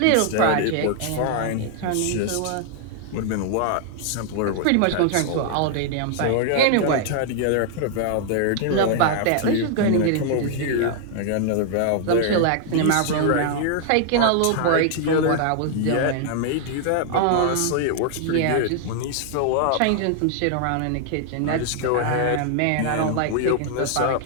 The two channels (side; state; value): both; different; correlation 0.00